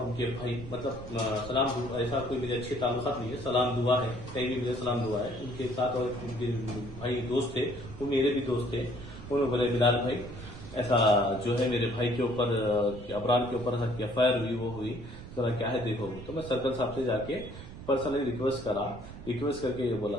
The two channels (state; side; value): noise; right; rumble, 13 dB below the sound